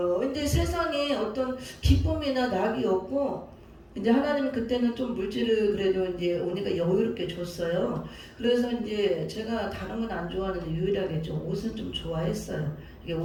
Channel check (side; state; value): both; identical; correlation 1.00